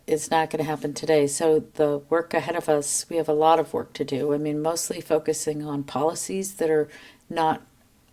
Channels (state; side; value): identical; both; correlation 1.00